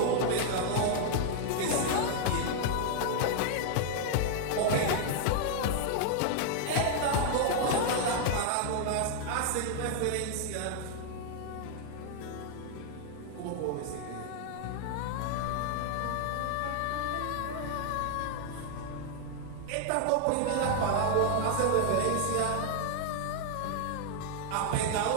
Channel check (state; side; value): different; both; correlation 0.00